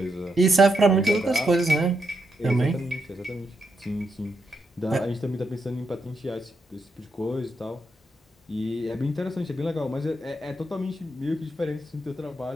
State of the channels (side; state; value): both; normal; correlation 0.81